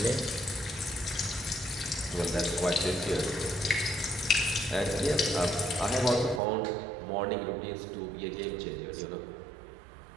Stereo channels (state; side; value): drops out; left; at 6.4 s